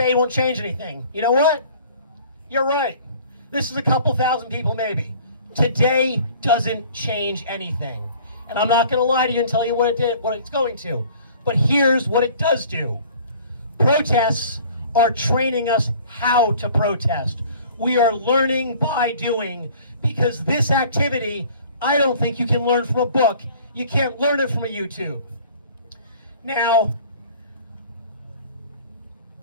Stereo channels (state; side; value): inverted; both; correlation -0.50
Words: won't change anything. You know what? You're right. This is a couple thousand people maybe. Today doesn't change anything. And I'm not going to lie to you and tell you what it's going to. But here's what it does do. Protests are training us how to protest. We are learning by doing, because this activity, I don't think you can learn from a book. You can't learn it from a YouTube. Now,